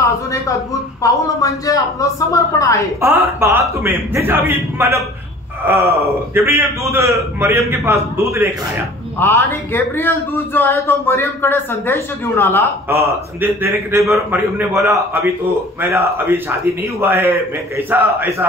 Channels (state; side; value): normal; both; correlation 0.47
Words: अजून एक अद्भुत पाऊल म्हणजे आपलं समर्पण आहे. और बात में जैसे अभी मतलब गब्रियल दूध मरियम के पास दूध लेकर आया. आणि गैब्रियल दूध जो आहे तो मरियम कडे संदेश घेऊन आला. संदेश देने के टाइम पर मरियम ने बोला अभी तो मेरा अभी शादी नहीं हुआ है, मैं कैसा